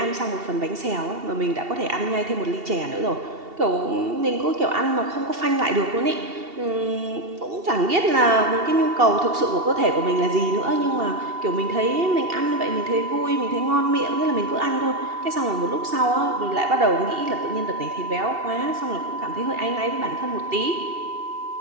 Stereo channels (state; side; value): late; left; 2.7 ms